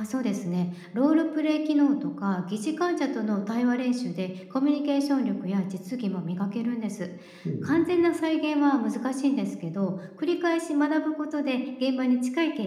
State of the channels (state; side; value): identical; both; correlation 1.00